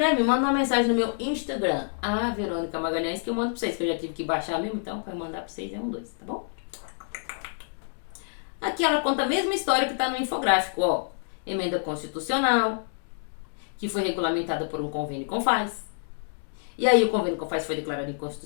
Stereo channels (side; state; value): right; silent; digital silence